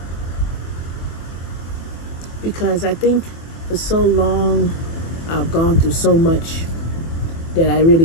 because I think for so long I've gone through so much that I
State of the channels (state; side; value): late; right; 24 ms